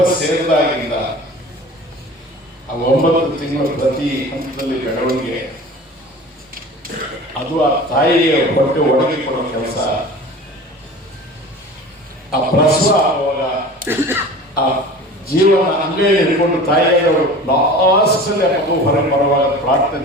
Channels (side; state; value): both; normal; correlation 0.39